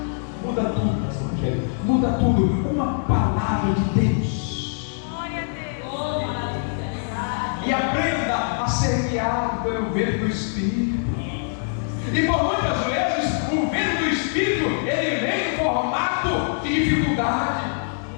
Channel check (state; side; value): silent; right; digital silence